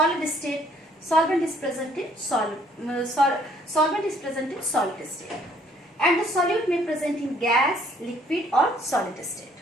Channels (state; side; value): normal; both; correlation 0.62